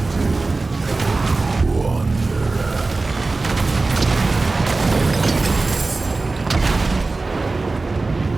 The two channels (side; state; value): left; quieter; 3.5 dB